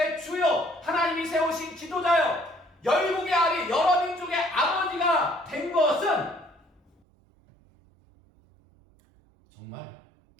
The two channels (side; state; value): left; drops out; at 6.9 s